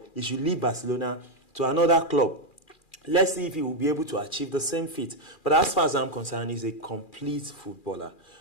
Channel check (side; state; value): right; late; 2.4 ms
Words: He should leave Barcelona to another club. Let's see if he will be able to achieve the same feat. But as far as I'm concerned, he's a complete footballer.